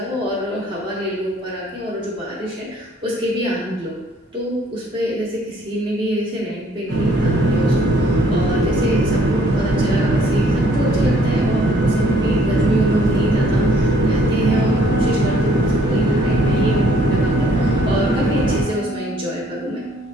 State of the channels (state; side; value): normal; both; correlation 0.62